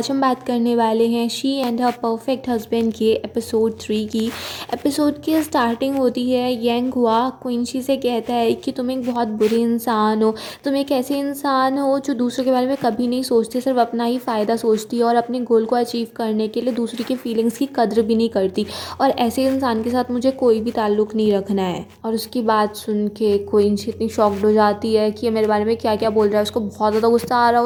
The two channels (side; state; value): both; identical; correlation 1.00